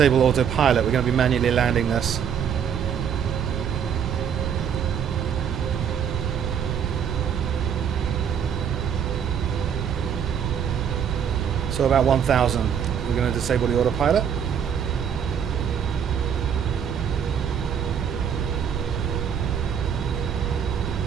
autopilot. We're going to be manually landing this. So about 1,000. We're going to disable the autopilot.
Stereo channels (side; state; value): left; quieter; 8.0 dB